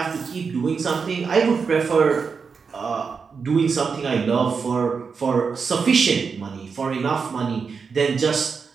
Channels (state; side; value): quieter; left; 5.5 dB